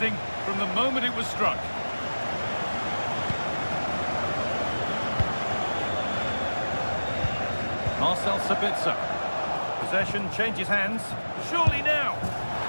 from the moment it was struck. Marcel Sabitzer. Possession changes hands. Surely now.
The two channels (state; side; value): inverted; both; correlation -1.00